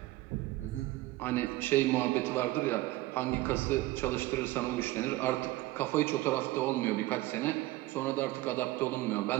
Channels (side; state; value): left; quieter; 18.0 dB